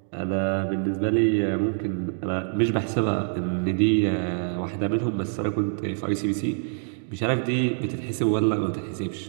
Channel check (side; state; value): left; silent; digital silence